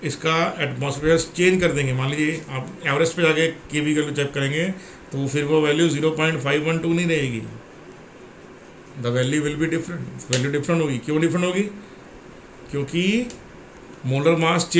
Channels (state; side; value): identical; both; correlation 1.00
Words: इसका एटमॉस्फेयर चेंज कर देंगे, मान लीजिए आप एवरेस्ट पे जाके के बी वैल्यू चेक करेंगे तो फिर वो वैल्यू 0.512 नहीं रहेगी, the value will be different, value different होगी। क्यों डिफरेंट होगी? क्योंकि मोलर मास